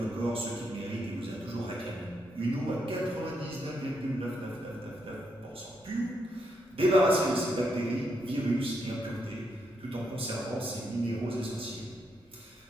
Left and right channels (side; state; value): both; normal; correlation 0.79